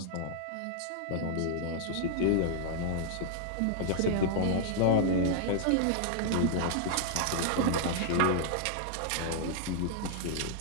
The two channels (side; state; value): both; different; correlation -0.01